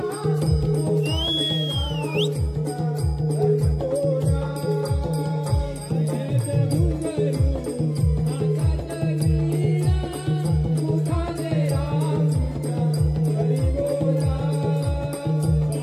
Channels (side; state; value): both; identical; correlation 1.00